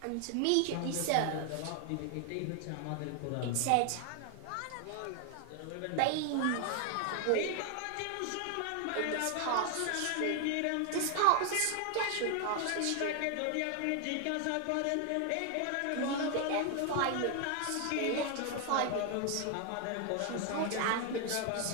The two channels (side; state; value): both; different; correlation 0.00